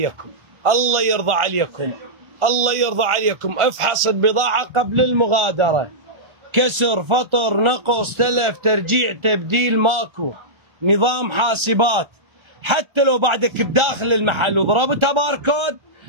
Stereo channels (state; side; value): late; left; 1.4 ms